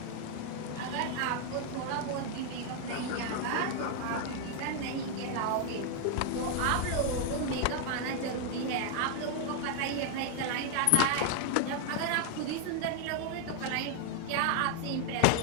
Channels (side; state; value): both; different; correlation 0.00